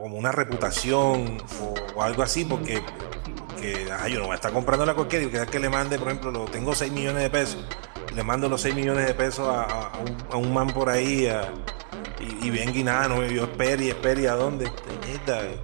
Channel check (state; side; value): silent; left; digital silence